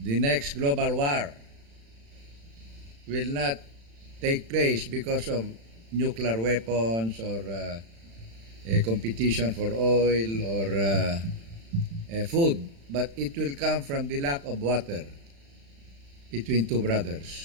next global war will not take place because of nuclear weapons or a competition for oil or food, but it will come from the lack of water between two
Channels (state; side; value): late; left; 35 ms